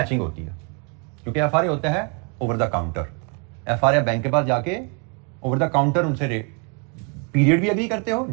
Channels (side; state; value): left; quieter; 36.2 dB